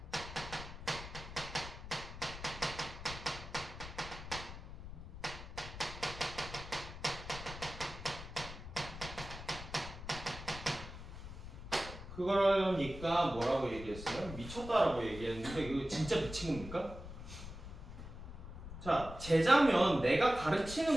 그러니까 뭐라고 얘기했어요? 미쳤다라고 얘기했는데 이거 진짜 미친 겁니까? 자, 제자면 내가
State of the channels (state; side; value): noise; left; rumble, 11 dB below the sound